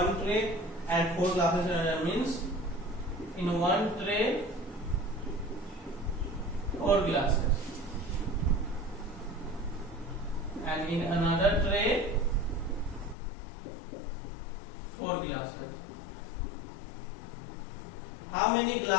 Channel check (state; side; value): drops out; right; at 13.2 s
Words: tray and 4 glasses in another. Means in one tray 4 glasses and in another tray 4 glasses. How many